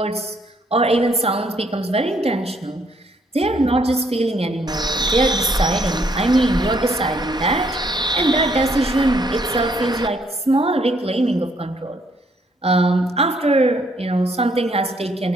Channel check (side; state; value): both; normal; correlation 0.68